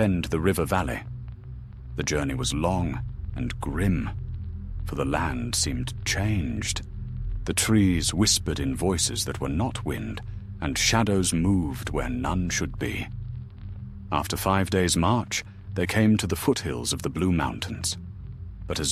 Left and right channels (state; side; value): identical; both; correlation 1.00